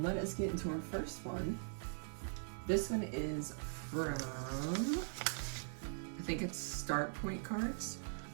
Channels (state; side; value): silent; left; digital silence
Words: us get into our first one. This one is from, I think it's Start Point cards.